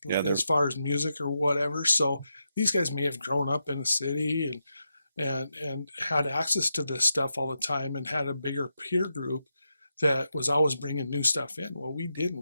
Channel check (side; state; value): both; inverted; correlation -0.86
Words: as far as music or whatever. So these guys may have grown up in a city and had access to this stuff all the time and had a bigger peer group that was always bringing new stuff in. Well, we